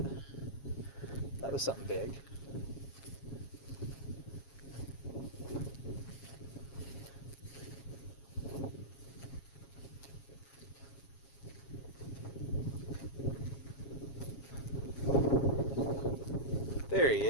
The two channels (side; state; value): right; late; 7.3 ms